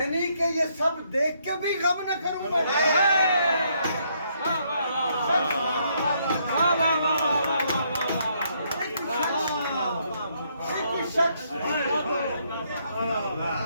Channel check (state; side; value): inverted; both; correlation -0.72